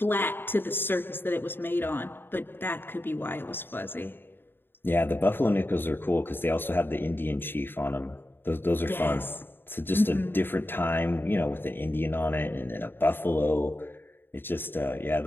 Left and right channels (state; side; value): late; right; 0.10 ms